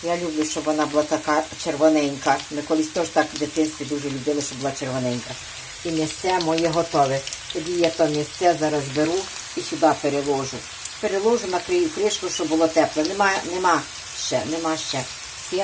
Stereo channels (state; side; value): identical; both; correlation 1.00